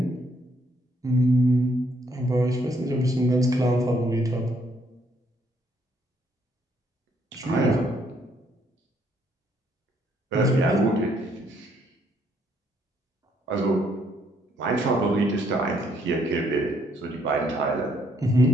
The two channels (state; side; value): normal; both; correlation 0.70